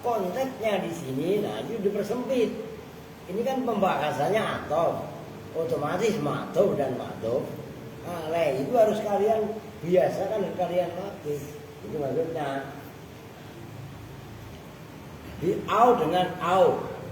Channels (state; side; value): identical; both; correlation 1.00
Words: Konteksnya di sini, nah itu dipersempit. Ini kan pembahasannya atof. Otomatis ma'tuf dan ma'tuf alaih itu harus kalian biasakan dan kalian latih. Itu maksudnya. Di au dengan au.